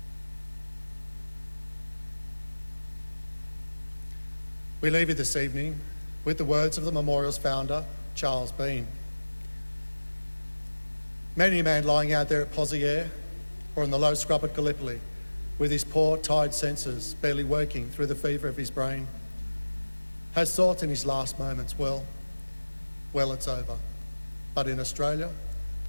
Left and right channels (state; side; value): inverted; both; correlation -1.00